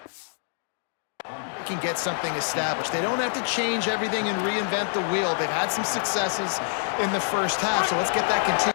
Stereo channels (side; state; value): right; silent; digital silence